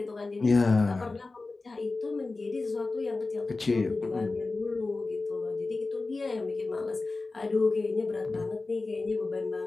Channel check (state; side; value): quieter; right; 3.6 dB